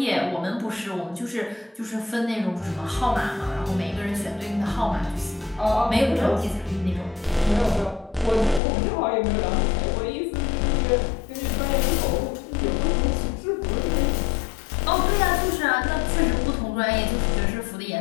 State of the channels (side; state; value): right; drops out; at 8.6 s